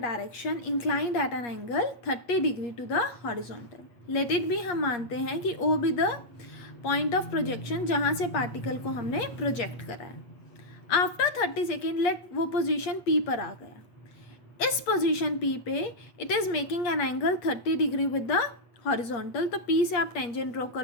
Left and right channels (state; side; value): late; right; 8.5 ms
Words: inclined at an angle 30 degree to the horizontal. Let it be, हम मानते हैं कि O be the point of projection जहाँ से particle को हमने project करा है. आफ्टर 30 सेकेंड लेट वो पोजीशन P पर आ गया. इस पोजीशन P पे it is making an angle 30 degree with the horizontal. तो P से आप टेंजेंट ड्रॉ